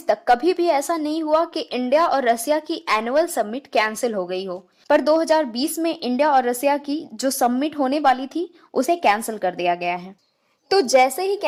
तक कभी भी ऐसा नहीं हुआ कि इंडिया और रसिया की एनुअल समिट कैंसिल हो गई हो, पर 2020 में इंडिया और रसिया की जो समिट होने वाली थी उसे कैंसिल कर दिया गया है। तो जैसे ही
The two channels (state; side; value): identical; both; correlation 1.00